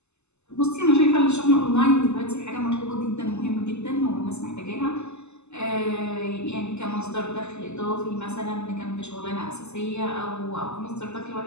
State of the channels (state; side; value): late; right; 0.82 ms